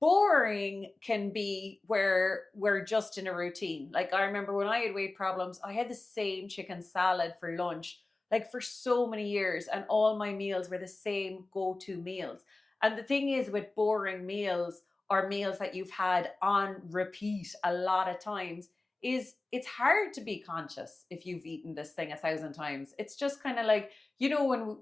can be where we're just in a routine. Like I remember when I had weight problems, I had the same chicken salad for lunch, like for so many years, and all my meals were the same go-to meals. And the thing is with boring meals, or meals that you've had on repeat a lot of times, is it's hard to be conscious if you've eaten this thing 1,000 times. It's just kind of like, when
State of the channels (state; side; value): quieter; right; 3.1 dB